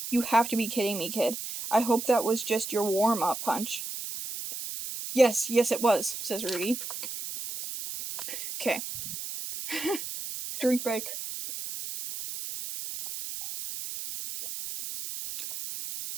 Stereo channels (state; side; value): noise; right; hiss, 7 dB below the sound